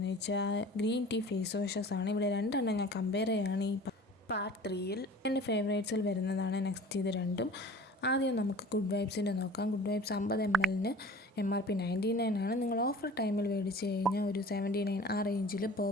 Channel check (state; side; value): normal; both; correlation 0.43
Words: വെച്ചാൽ ഗ്രീൻ ടീ ഫേസ് വാഷസ് ആണ്. ഇവിടെ രണ്ടെണ്ണം ഞാൻ കമ്പയർ ചെയ്യുകയാണ് ഈ പാർട്ട് 3യിൽ. എൻ്റെ ഫേവറേറ്റ്സിൽ വരുന്നതാണ് നെക്സ്റ്റ് ഇത് രണ്ടും. ആദ്യം നമുക്ക് ഗുഡ് വൈബ്സിൻ്റെ നോക്കാം. ഗുഡ് വൈബ്സ് 50 ml MRP 99 ആണ്. നിങ്ങൾ ഓഫർ ടൈമിൽ മേടിച്ച് കഴിഞ്ഞാൽ ഒരു 79 ആ റേഞ്ചിൽ